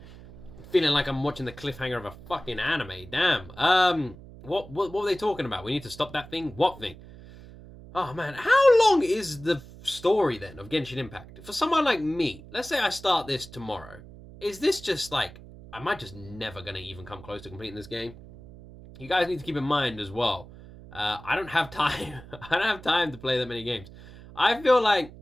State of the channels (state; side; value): noise; right; hum, 18 dB below the sound